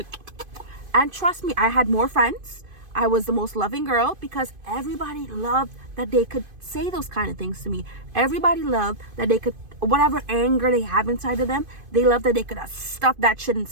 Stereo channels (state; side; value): late; left; 2.5 ms